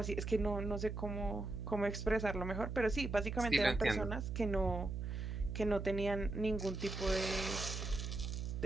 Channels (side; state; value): right; noise; hum, 4 dB below the sound